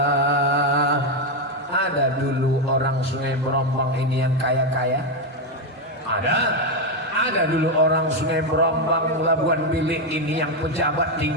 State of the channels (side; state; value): both; normal; correlation 0.06